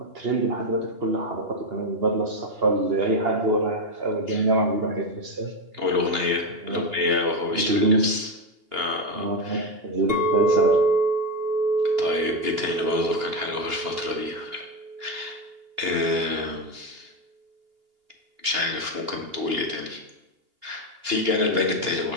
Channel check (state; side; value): late; left; 2.8 ms